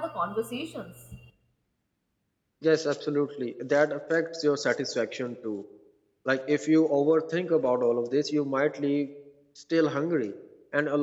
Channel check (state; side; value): identical; both; correlation 1.00